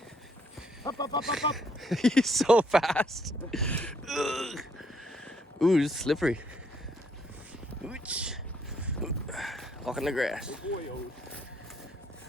Up, up, up, up, up. He's so fast. Ugh. Ooh, it's slippery. Ooch. Walk in the grass. Good boy, Odie.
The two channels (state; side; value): normal; both; correlation 0.69